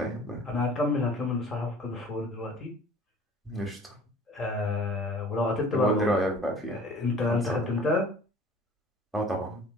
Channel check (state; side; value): normal; both; correlation 0.48